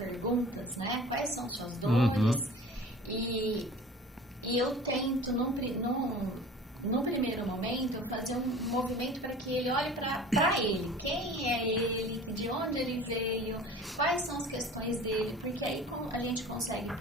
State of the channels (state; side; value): normal; both; correlation 0.42